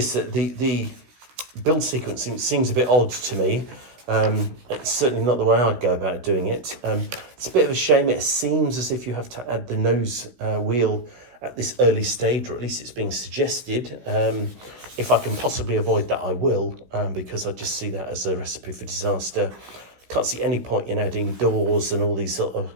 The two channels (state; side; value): late; left; 16 ms